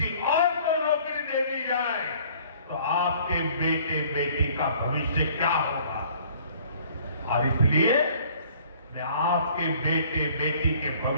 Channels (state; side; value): inverted; both; correlation -0.56